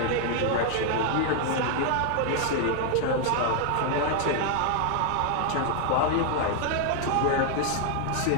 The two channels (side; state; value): both; different; correlation 0.00